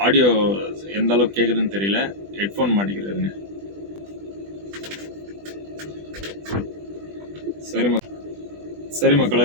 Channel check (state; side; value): late; left; 20 ms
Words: ஆடியோ எந்த அளவுக்கு கேட்குதுன்னு தெரியல, ஹெட்ஃபோன் மாட்டிக்கிறாருங்க. சரி